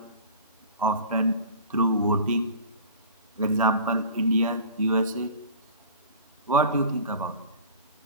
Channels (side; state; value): both; inverted; correlation -0.40